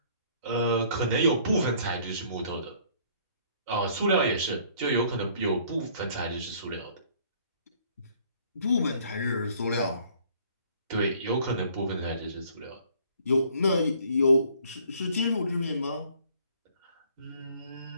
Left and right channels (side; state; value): both; inverted; correlation -0.58